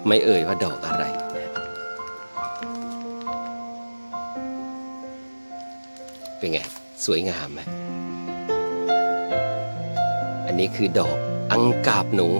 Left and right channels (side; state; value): both; inverted; correlation -1.00